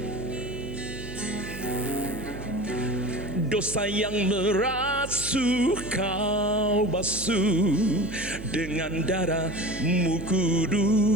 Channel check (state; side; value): noise; right; hum, 11 dB below the sound